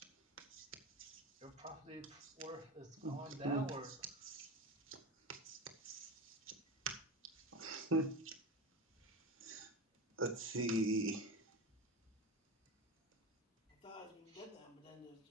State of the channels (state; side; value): normal; both; correlation 0.25